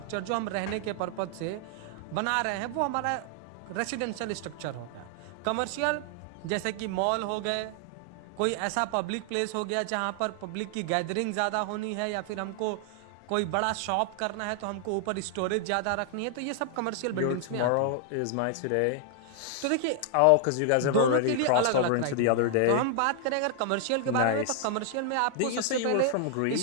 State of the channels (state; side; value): different; both; correlation 0.00